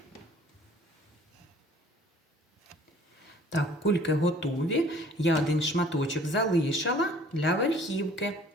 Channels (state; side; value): normal; both; correlation 0.52